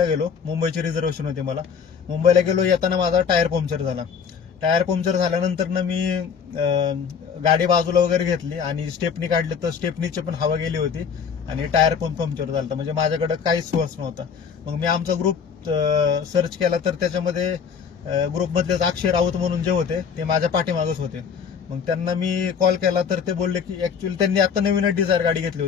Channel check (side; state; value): right; quieter; 6.7 dB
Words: गेलो. मुंबईची रिझर्वेशन होती मला. मुंबईला गेलो. येताना माझा टायर पंक्चर झाला. टायर पंक्चर झाल्यानंतर मी गाडी बाजूला वगैरे घेतली आणि स्टेपनी काढली, तर स्टेपनीची पण हवा गेली होती आणि टायर पण पंक्चर झालं. म्हणजे माझ्याकडे काहीच सोर्स नव्हता. मग मी आमचा ग्रुप सर्च केला, तर त्याच्यामध्ये ग्रुपमधलेच अक्षय राऊत म्हणून जे होते ते माझ्या पाठीमागच होते. मग त्यांना मी कॉल केला, तर ते बोलले की ऍक्च्युअली त्यांनी आता नवीनच डिझायर गाडी घेतली